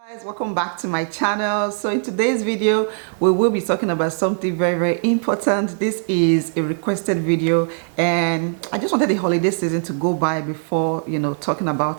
Guys, welcome back to my channel. So in today's video we will be talking about something very important. This is a requested video and I just wanted the holiday season to go by before talking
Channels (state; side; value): silent; left; digital silence